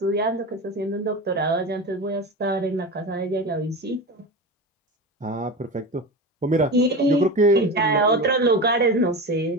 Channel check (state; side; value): normal; both; correlation 0.26